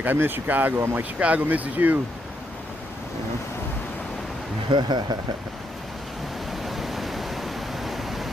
I miss Chicago. I'm like, Chicago misses you. You know?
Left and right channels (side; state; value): both; normal; correlation 0.78